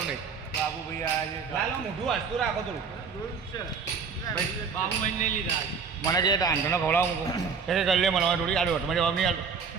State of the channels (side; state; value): left; quieter; 5.8 dB